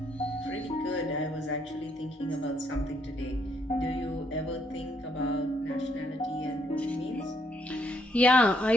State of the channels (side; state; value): both; normal; correlation 0.72